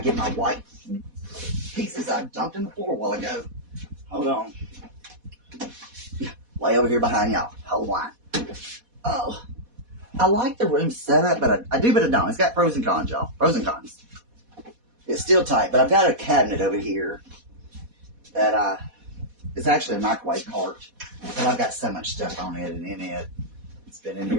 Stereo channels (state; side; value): late; left; 4.1 ms